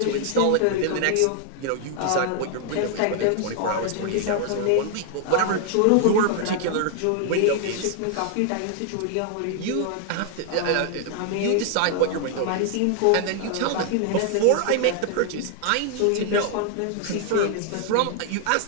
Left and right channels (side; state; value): both; different; correlation 0.00